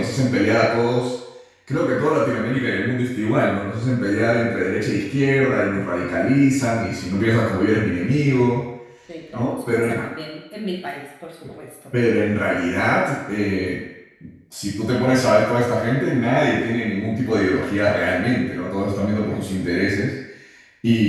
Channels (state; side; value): identical; both; correlation 1.00